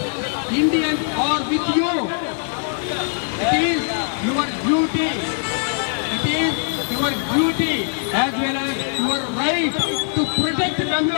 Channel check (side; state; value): right; silent; digital silence